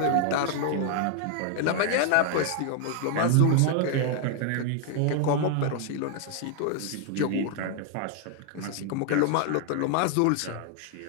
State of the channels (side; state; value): both; different; correlation 0.00